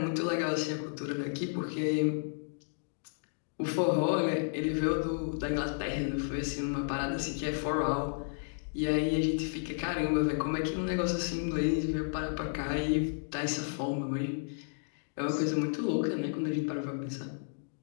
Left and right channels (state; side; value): silent; right; digital silence